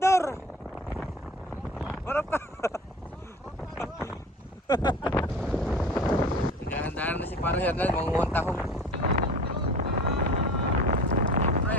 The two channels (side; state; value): both; normal; correlation 0.40